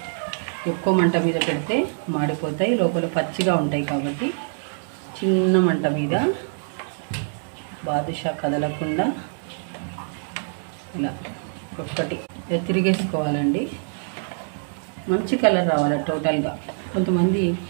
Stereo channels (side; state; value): left; silent; digital silence